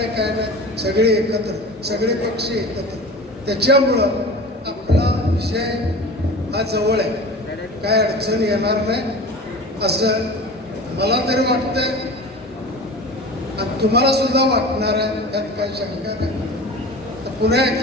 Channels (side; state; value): both; normal; correlation 0.36